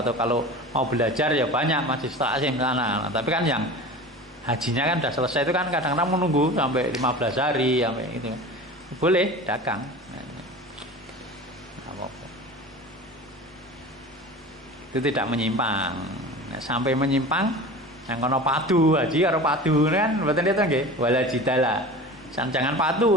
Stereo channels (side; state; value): both; normal; correlation 0.35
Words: kalau mau belajar ya banyak masih taklim sana. Nah, tapi kan yang hajinya kan sudah selesai itu kan kadang-kadang menunggu sampai 15 hari sampai itu. Boleh dagang. Itu tidak menyimpang. Nah, sampai menyimpang yang kono padu haji karo padu kan mboten itu nggih wala jidala. Jangan